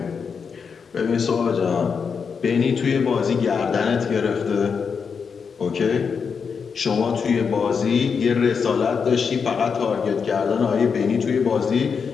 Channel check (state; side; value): quieter; right; 6.0 dB